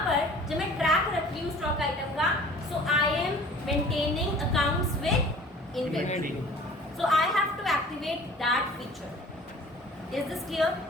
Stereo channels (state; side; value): normal; both; correlation 0.47